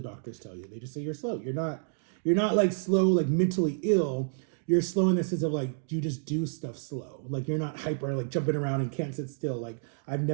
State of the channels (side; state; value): left; silent; digital silence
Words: doctors tell you. They just say you're slow. You're not like slow, like mentally ill. You're slow in the sense of like, you just do stuff slow. Like you're not hyper, like jumping around and can't sit still. Like I've